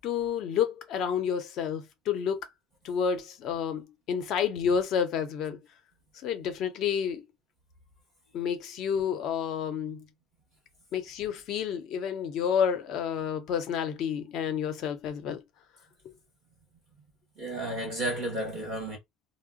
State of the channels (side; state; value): right; quieter; 6.5 dB